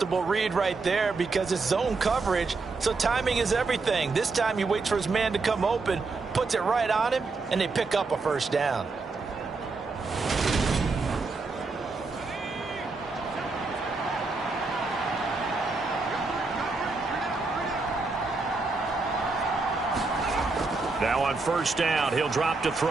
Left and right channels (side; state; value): left; quieter; 3.9 dB